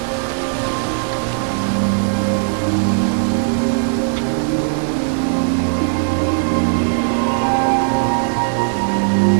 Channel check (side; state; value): left; silent; 60 dB below the other